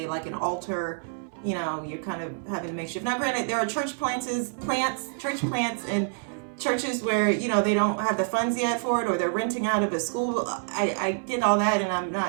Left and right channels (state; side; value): silent; left; 60 dB below the other